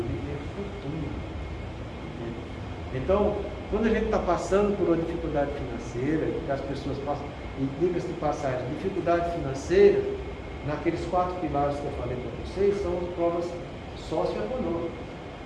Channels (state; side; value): identical; both; correlation 1.00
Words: ter fortuna. Então, quando a gente está passando por uma dificuldade financeira, que as pessoas passam, e diga-se de passagem, dificuldade financeira, naqueles 4 pilares que eu falei para vocês, são as provas socioeconômicas.